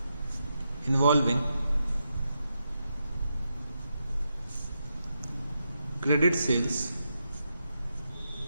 involving credit sales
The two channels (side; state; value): both; inverted; correlation -0.84